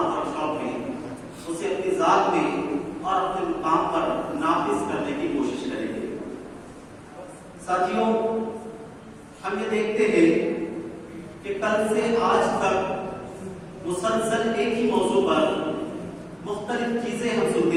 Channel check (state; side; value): identical; both; correlation 1.00